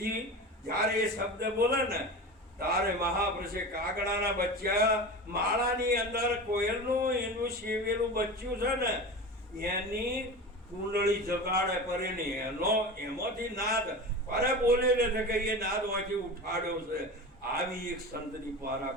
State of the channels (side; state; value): both; normal; correlation 0.30